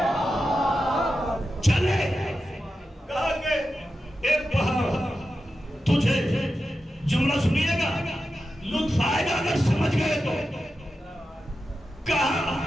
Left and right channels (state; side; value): normal; both; correlation 0.91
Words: چلے، کہا کہ ایک پہاڑ تجھے، جملہ سنیے گا لطف آئے گا اگر سمجھ گئے تو، کہا